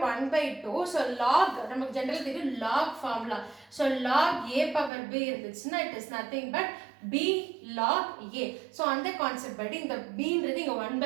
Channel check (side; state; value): left; drops out; at 4.9 s